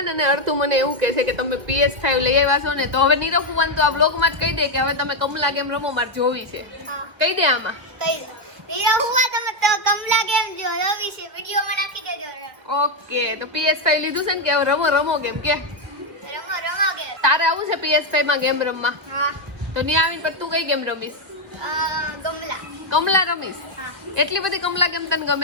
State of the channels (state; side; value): late; left; 1.8 ms